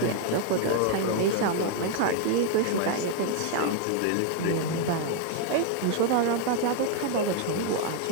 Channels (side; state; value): both; different; correlation 0.00